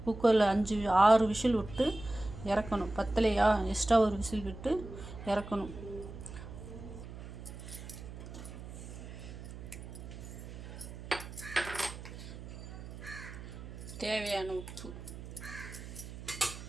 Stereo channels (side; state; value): right; noise; hum, 11 dB below the sound